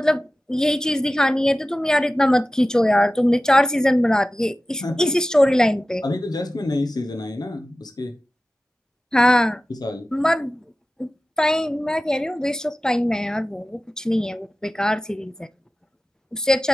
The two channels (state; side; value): normal; both; correlation 0.95